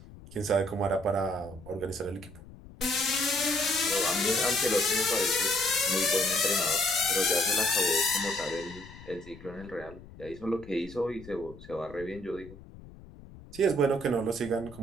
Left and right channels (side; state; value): left; noise; rumble, 18 dB below the sound